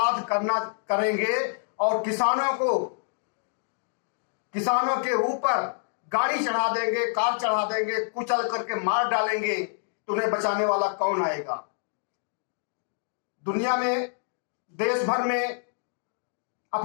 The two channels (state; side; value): silent; right; digital silence